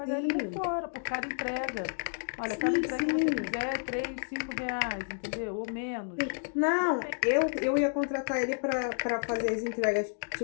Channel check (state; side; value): silent; right; digital silence